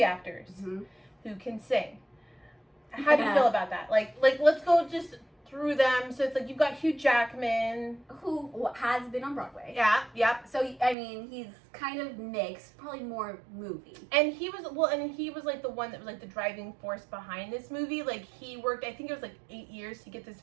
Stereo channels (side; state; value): left; drops out; at 11.0 s